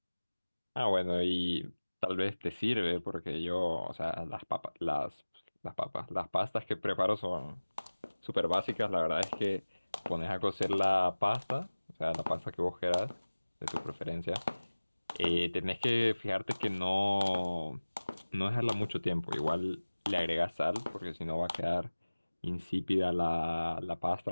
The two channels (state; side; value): inverted; both; correlation -1.00